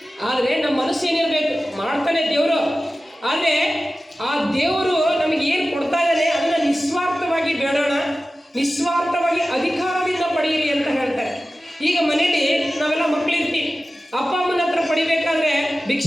ಆದರೆ ನಮ್ಮ ಮನಸ್ಸು ಏನಿರಬೇಕು, ಮಾಡ್ತಾನೆ ದೇವರು. ಆದರೆ ಆ ದೇವರು ನಮಗೆ ಏನು ಕೊಡ್ತಾ ಇದ್ದಾನೆ ಅದನ್ನು ನಿಸ್ವಾರ್ಥವಾಗಿ ಬೇಡೋಣ, ನಿಸ್ವಾರ್ಥವಾಗಿ ಅಧಿಕಾರದಿಂದ ಪಡೆಯಿರಿ ಅಂತ ಹೇಳ್ತಾರೆ. ಈಗ ಮನೇಲಿ ನಾವೆಲ್ಲ ಮಕ್ಕಳಿರ್ತೀವಿ, ಅಪ್ಪ ಅಮ್ಮನ ಹತ್ರ ಪಡಿಬೇಕಾದ್ರೆ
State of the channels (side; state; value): both; normal; correlation 0.95